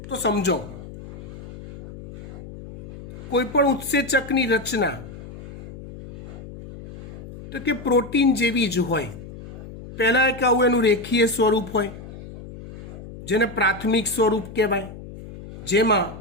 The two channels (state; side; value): noise; left; hum, 14 dB below the sound